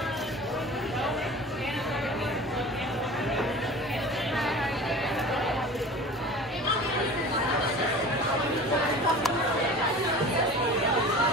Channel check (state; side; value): normal; both; correlation 0.39